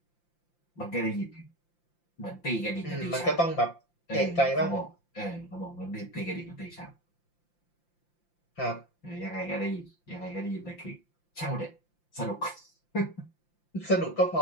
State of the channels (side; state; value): right; late; 5.8 ms